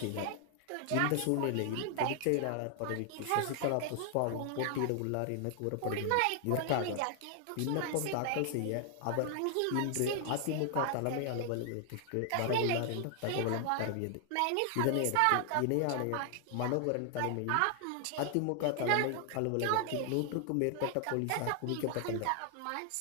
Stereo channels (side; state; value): both; different; correlation 0.00